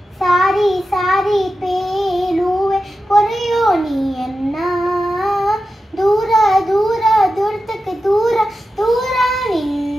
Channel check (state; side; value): normal; both; correlation 0.91